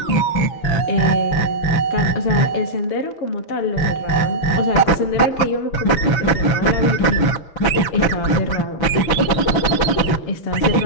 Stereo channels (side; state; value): right; late; 6.1 ms